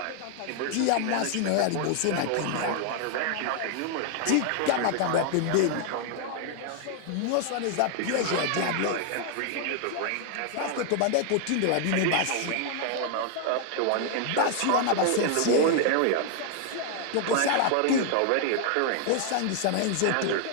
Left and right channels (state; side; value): different; both; correlation 0.00